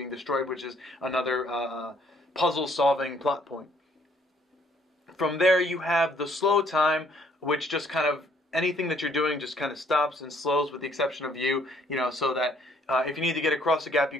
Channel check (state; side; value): normal; both; correlation 0.64